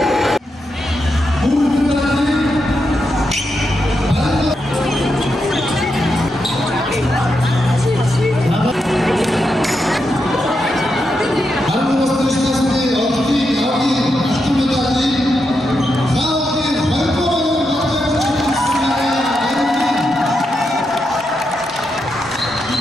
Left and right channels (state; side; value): normal; both; correlation 0.84